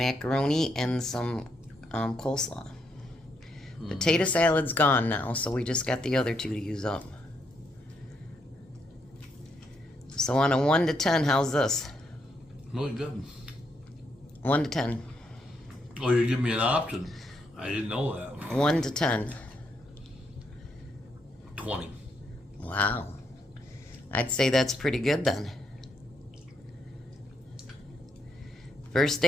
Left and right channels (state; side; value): normal; both; correlation 0.77